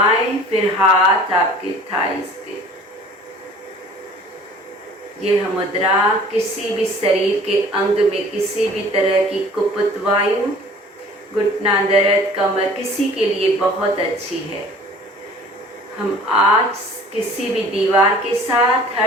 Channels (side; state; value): both; normal; correlation 0.48